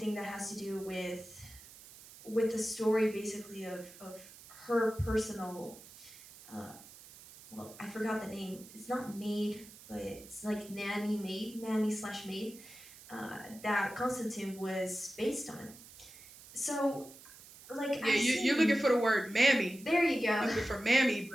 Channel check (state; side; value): noise; right; hiss, 19 dB below the sound